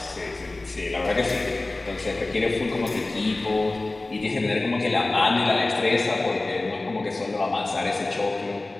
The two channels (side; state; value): right; quieter; 3.0 dB